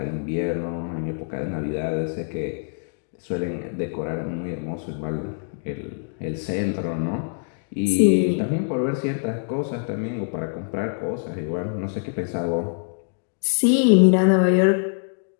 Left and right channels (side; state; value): right; silent; 62 dB below the other